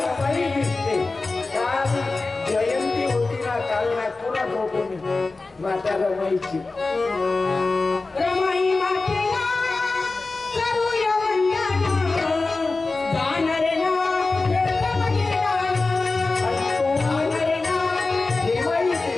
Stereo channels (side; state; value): right; quieter; 3.6 dB